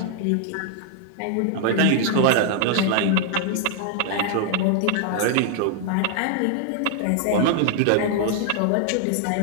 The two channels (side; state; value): both; different; correlation 0.00